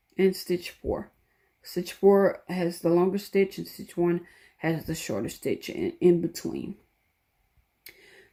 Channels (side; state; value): both; identical; correlation 1.00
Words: and stitch 4. Stitch 4 has the longer stitch, and stitch 1 has the shorter stitch in between.